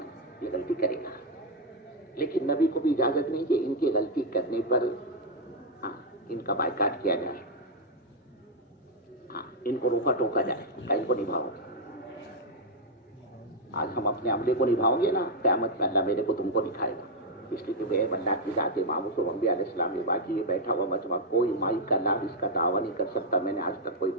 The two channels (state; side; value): normal; both; correlation -0.02